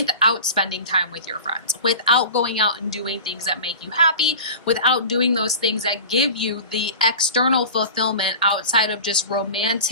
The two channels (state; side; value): inverted; both; correlation -0.35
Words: spending time with your friends, without going out and doing things that make you happy, without doing those things that give you the external fulfillment outside of just